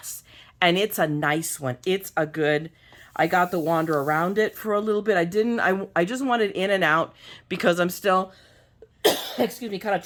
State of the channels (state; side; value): identical; both; correlation 1.00